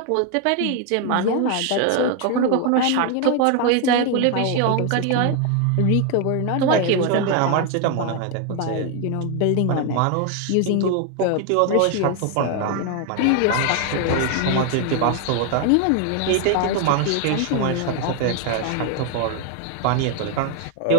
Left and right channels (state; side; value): different; both; correlation 0.01